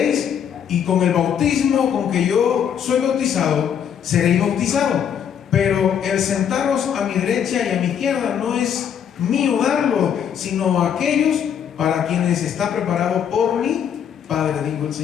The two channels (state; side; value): quieter; right; 8.4 dB